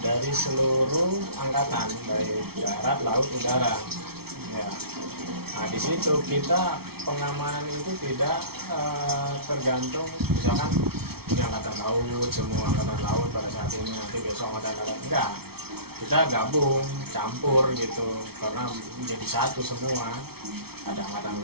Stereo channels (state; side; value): late; left; 0.95 ms